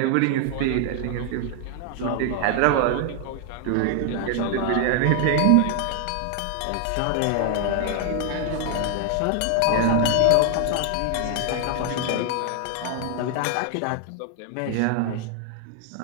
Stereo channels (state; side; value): different; both; correlation 0.00